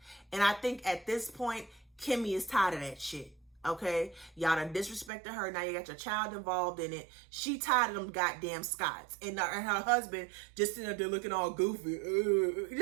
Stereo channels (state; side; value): drops out; left; at 5.1 s